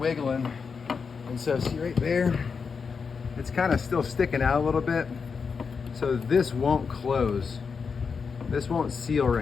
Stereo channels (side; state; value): right; quieter; 5.6 dB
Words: And so see right there, it's kind of still sticking out a little bit. So this won't close. This won't seal